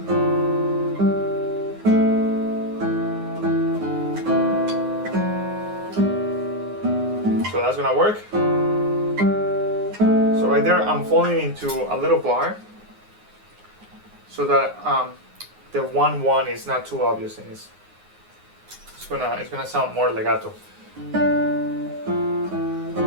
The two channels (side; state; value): left; late; 9.6 ms